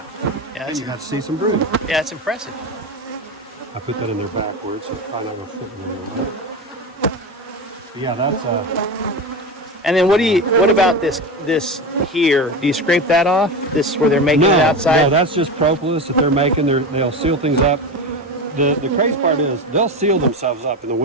Yeah, And you got to see some brood. yeah, it's impressive. I put that in there backwards, so it's probably not going to fit in there. Yeah, that's And then what about this here? Do you scrape that off? This is where they're making it outside? No, that's just propolis that they're making. They'll seal things up. The crazy part is they'll seal themselves up in the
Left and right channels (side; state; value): both; normal; correlation 0.22